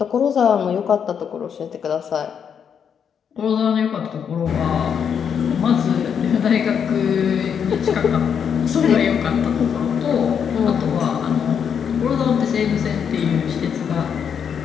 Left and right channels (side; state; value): right; quieter; 7.5 dB